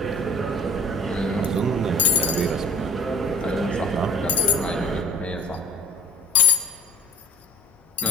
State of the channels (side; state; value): both; normal; correlation 0.47